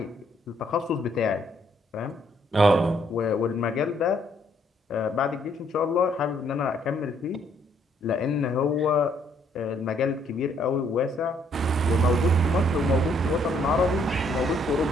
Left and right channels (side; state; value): both; normal; correlation 0.68